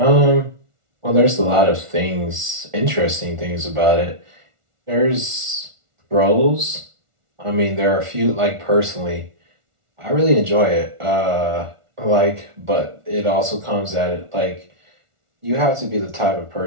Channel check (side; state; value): left; late; 1.4 ms